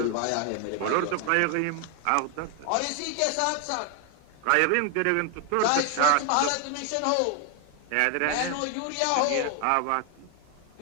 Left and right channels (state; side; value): different; both; correlation 0.01